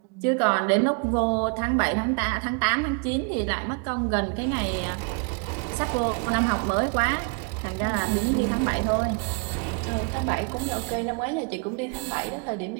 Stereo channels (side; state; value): left; quieter; 37.4 dB